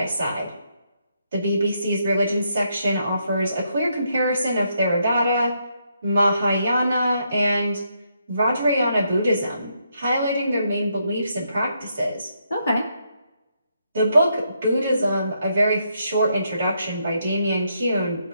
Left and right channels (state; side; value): inverted; both; correlation -0.77